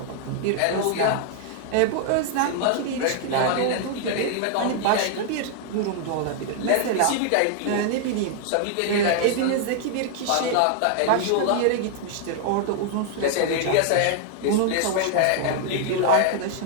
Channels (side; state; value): both; different; correlation 0.00